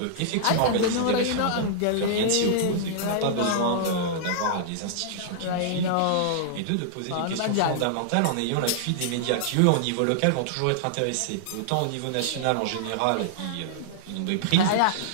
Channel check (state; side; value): different; both; correlation -0.01